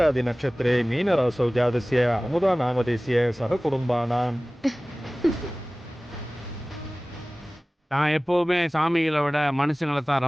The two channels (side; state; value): both; normal; correlation 0.98